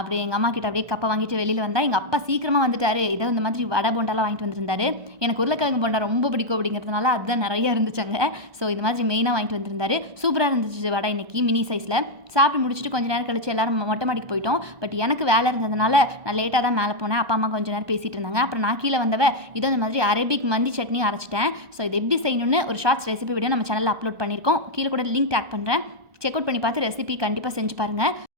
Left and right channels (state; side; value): late; left; 1.2 ms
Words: எங்க அம்மா கிட்ட அப்படியே கப்பை வாங்கிட்டு வெளியில வந்தா, எங்க அப்பா சீக்கிரமா வந்துட்டாரு. ஏதோ இந்த மாதிரி வடை போண்டாலாம் வாங்கிட்டு வந்திருந்தாரு. எனக்கு உருளைக்கிழங்கு போண்டா ரொம்ப பிடிக்கும் அப்படிங்கிறதுனால அதுதான் நிறைய இருந்துச்சாங்க. ஸோ இந்த மாதிரி மெயினாக வாங்கிட்டு வந்திருந்தாரு. சூப்பராக இருந்துச்சு வடை இன்னைக்கு மினி சைஸில். சாப்பிட்டு முடிச்சுட்டு கொஞ்ச நேரம் கழிச்சு எல்லாரும் மொட்டை மாடிக்கு போயிட்டோம். பட் எனக்கு வேலை இருந்ததுனால நான் லேட்டாக தான் மேலே போனேன். அப்பா அம்மா கொஞ்சம் நேரம் பேசிகிட்டு இருந்தாங்க. அப்புறம் நான் கீழே வந்தவ இதோ இந்த மாதிரி அரபிக் மந்தி சட்னி அரைச்சிட்டேன். ஸோ இது எப்படி செய்யணும்னு ஒரு ஷார்ட்ஸ் ரெசிபி வீடியோ நம்ம சேனலில் அப்லோட் பண்ணியிருக்கோம். கீழே கூட லிங்க் டேக் பண்ணுறேன். செக் அவுட் பண்ணி பார்த்து ரெசிபி கண்டிப்பாக செஞ்சு பாருங்கள்.